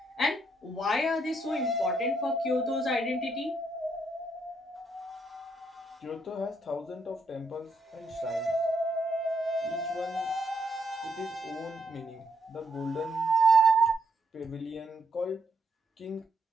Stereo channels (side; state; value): both; normal; correlation 0.75